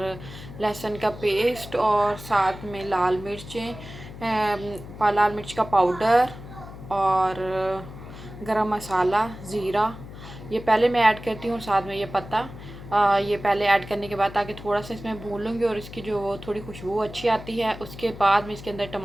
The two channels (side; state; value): left; noise; hum, 14 dB below the sound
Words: लहसुन का पेस्ट और साथ में लाल मिर्च का पाउडर और गरम मसाला, ज़ीरा ये पहले मैं ऐड करती हूँ। साथ में ये पत्ता ये पहले ऐड करने के बाद ताकि थोड़ा सा इसमें भून लूँगी और इसकी जो वो थोड़ी खुशबू अच्छी आती है। उसके बाद मैं इसके अंदर